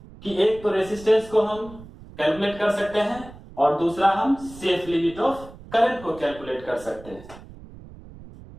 कि एक तो रेसिस्टेंस को हम कैलकुलेट कर सकते हैं और दूसरा हम सेफ लिमिट ऑफ करंट को कैलकुलेट कर सकते हैं।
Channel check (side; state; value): right; noise; rumble, 18 dB below the sound